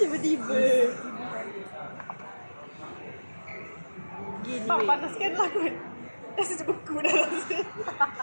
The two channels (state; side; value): inverted; both; correlation -1.00